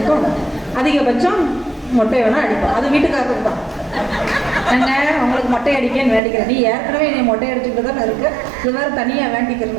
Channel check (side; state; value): left; drops out; at 6.2 s